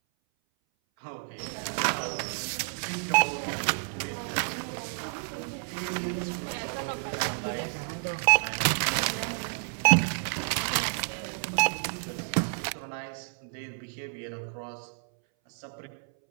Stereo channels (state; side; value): silent; left; 58 dB below the other